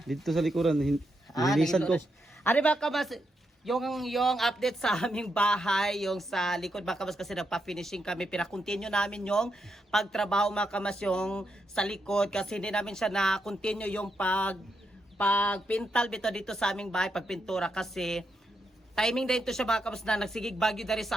Dito sa likuran, nilisan ko. Ari mga kabas, yung update sa aming bahay, yung sa likod mga kabas kasi nagpa-finishing kami. Pinakontinue namin yung pagtrabaho mga kabas yung sa likod kasi hindi namin siya na-continue yung pagpintal dito sa aming bahay, pagpintura kasi timing din to siya mga kabas na nagsigig bagyo dari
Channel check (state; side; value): normal; both; correlation 0.82